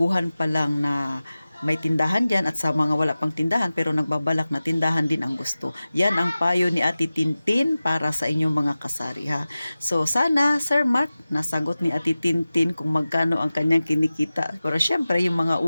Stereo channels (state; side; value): inverted; both; correlation -0.96